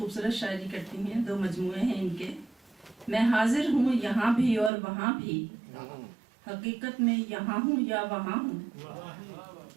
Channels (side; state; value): left; drops out; at 4.7 s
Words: شاعری کرتی ہیں, 2 مجموعے ہیں ان کے. میں حاضر ہوں یہاں بھی اور وہاں بھی, حقیقت میں یہاں ہوں یا وہاں ہوں.